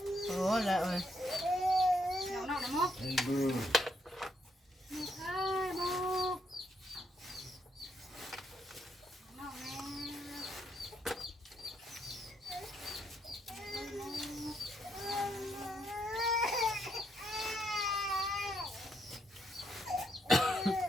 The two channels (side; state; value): both; normal; correlation 0.75